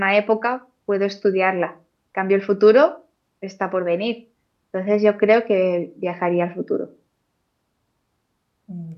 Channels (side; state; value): both; identical; correlation 1.00